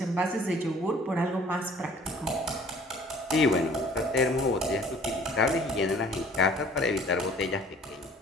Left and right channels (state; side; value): normal; both; correlation 0.52